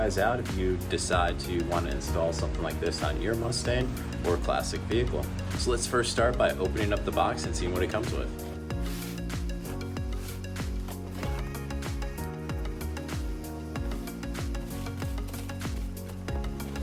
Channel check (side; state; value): both; identical; correlation 1.00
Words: out if you decide to want to install something like this on your Mustang or classic vehicle. So let's first start by opening up the box and seeing what it comes with.